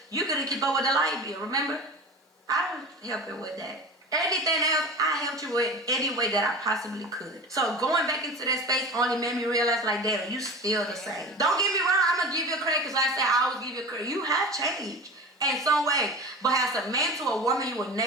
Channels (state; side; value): normal; both; correlation 0.34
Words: you couldn't keep up with the light bill. Remember? I was helping with that. Anything else, I helped you with any way that I possibly could. So going back into that space only made me realize, like, damn, you still the same. Don't get me wrong, I'm gonna give you credit because I said I always give you credit. You have changed in some way, but as a man to a woman, you will